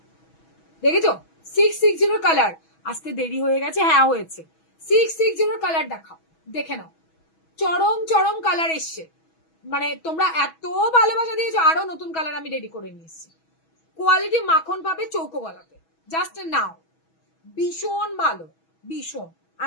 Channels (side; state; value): right; late; 6.2 ms